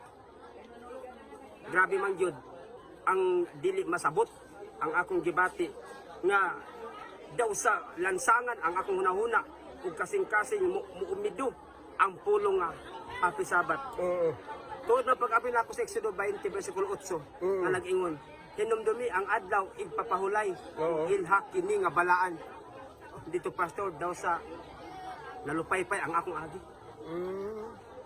Grabe man gyud ang dili masabot ang akong gibati nga daw sa lansangan ang akong hunahuna ug kasing-kasing muumido ang pulong nga Happy Sabbath. Tuod na pag-abi na ako sa Exodo 20, versikulo 8, na nag-ingon, hinumdumi ang adlaw, igpapahulay, Oo. ilhak kini nga balaan. Dito, pastor, daw sa nalupaypay ang akong agi.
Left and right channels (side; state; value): both; identical; correlation 1.00